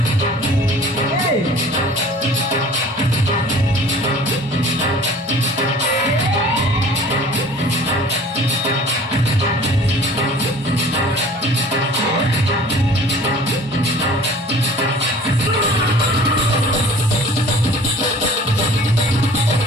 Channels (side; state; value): both; normal; correlation 0.47